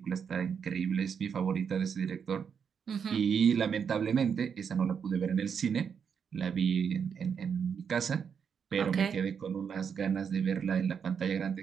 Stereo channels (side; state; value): left; quieter; 6.9 dB